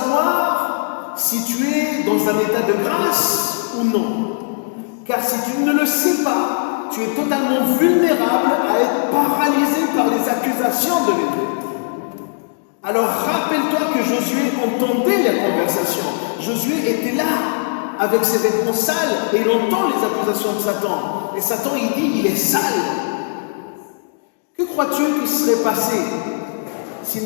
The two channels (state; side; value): silent; right; digital silence